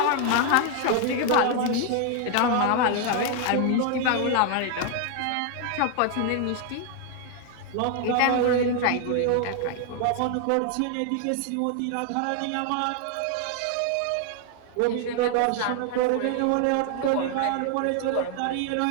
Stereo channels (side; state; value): both; different; correlation 0.00